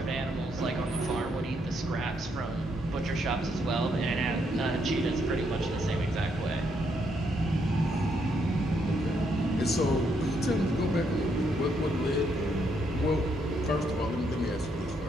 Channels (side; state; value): both; normal; correlation 0.75